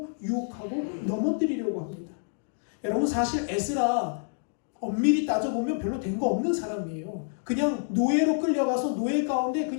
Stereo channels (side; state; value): right; silent; digital silence